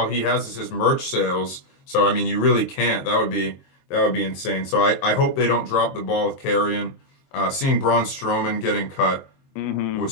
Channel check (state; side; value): late; right; 23 ms